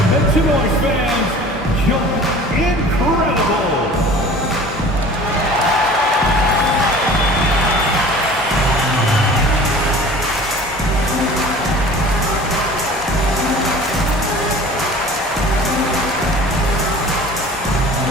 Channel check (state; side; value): normal; both; correlation 0.44